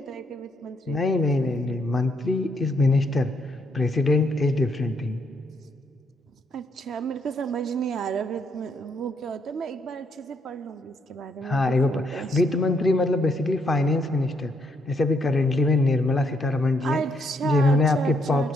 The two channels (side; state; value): both; normal; correlation 0.74